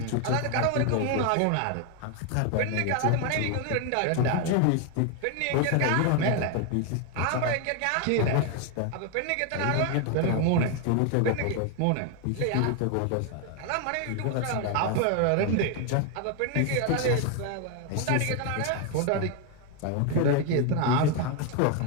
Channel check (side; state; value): both; different; correlation 0.01